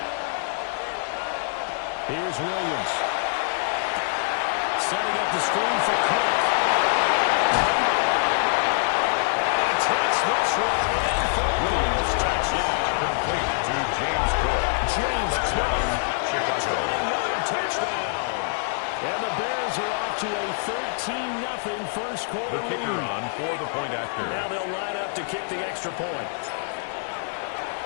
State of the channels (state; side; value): silent; right; 62 dB below the other